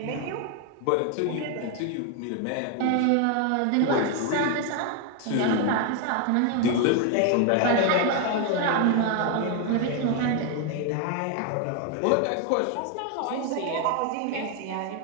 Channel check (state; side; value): different; both; correlation 0.01